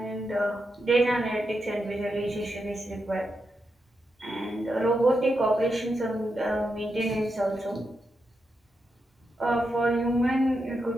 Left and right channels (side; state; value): both; normal; correlation 0.86